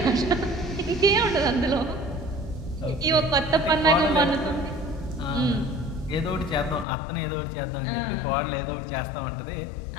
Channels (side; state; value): right; drops out; at 6.9 s